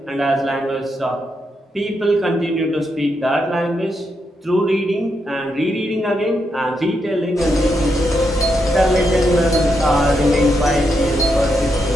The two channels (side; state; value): both; normal; correlation 0.82